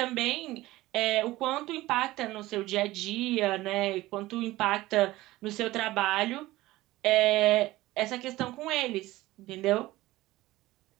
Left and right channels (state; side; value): quieter; left; 17.8 dB